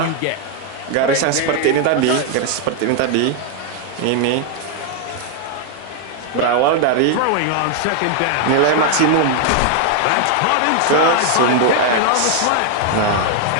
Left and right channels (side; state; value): both; different; correlation 0.00